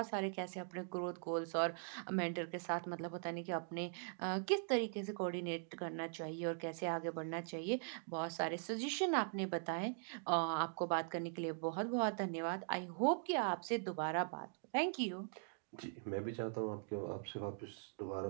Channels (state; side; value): silent; left; digital silence